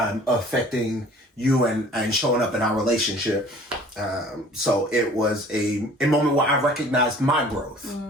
affecting you and showing up in our relationship. So it was a moment where I recognized my growth.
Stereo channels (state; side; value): normal; both; correlation 0.49